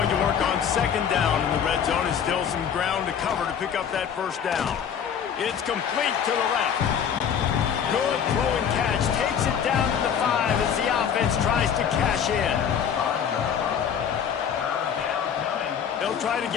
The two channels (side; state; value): right; quieter; 8.0 dB